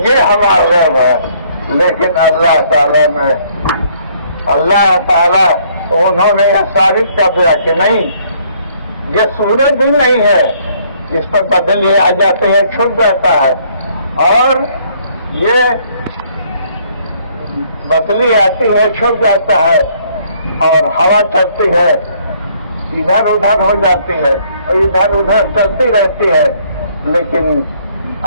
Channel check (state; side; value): inverted; both; correlation -0.64